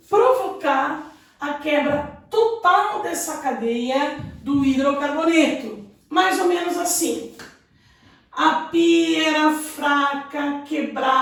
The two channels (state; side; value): identical; both; correlation 1.00